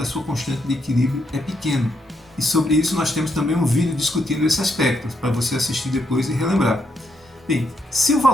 sua constante de equilíbrio é pequeno. E sobre isso nós temos também um vídeo discutindo esse aspecto, para você assistir depois e relembrar. Bem, se o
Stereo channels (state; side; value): normal; both; correlation 0.78